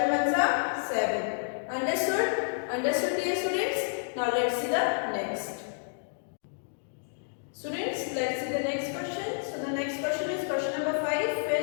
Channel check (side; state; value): right; silent; digital silence